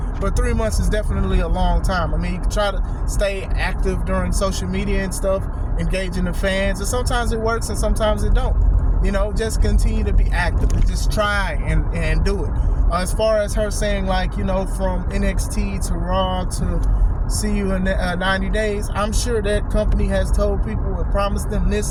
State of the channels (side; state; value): both; identical; correlation 1.00